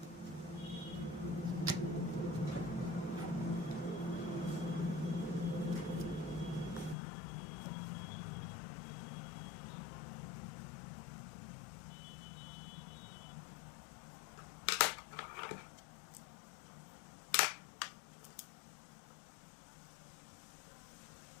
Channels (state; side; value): drops out; right; at 7.0 s